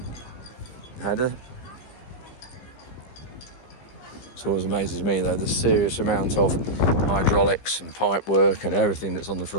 header. It always amazes me though, the serious amount of hydraulics and pipe work and everything that's on the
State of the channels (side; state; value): right; late; 15 ms